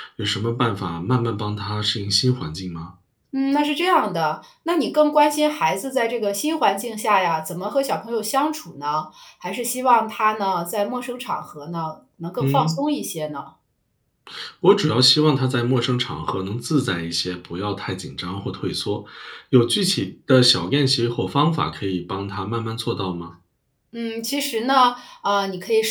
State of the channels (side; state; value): both; identical; correlation 1.00